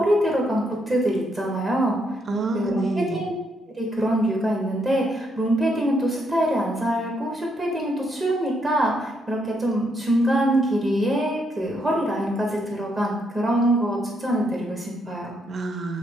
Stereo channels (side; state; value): both; normal; correlation 0.76